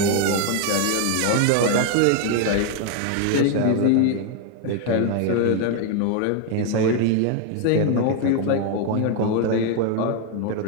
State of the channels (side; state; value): both; different; correlation 0.01